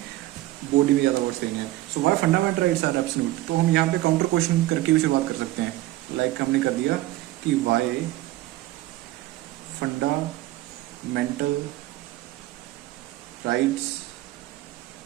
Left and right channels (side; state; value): left; quieter; 16.5 dB